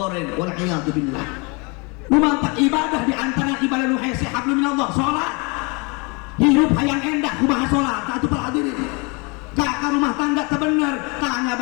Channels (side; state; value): right; quieter; 30.3 dB